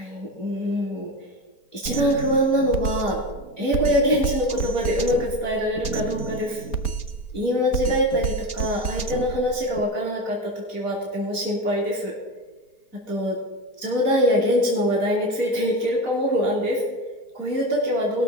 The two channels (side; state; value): right; late; 4.1 ms